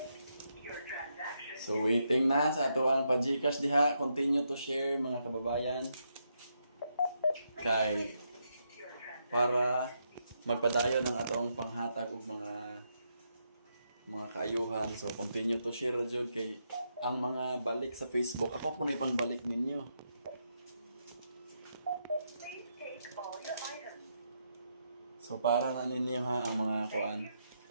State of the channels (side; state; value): both; inverted; correlation -0.80